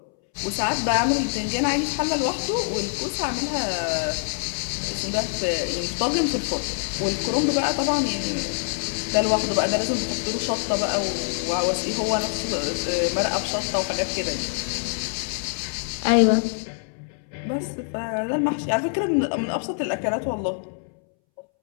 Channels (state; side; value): silent; right; 62 dB below the other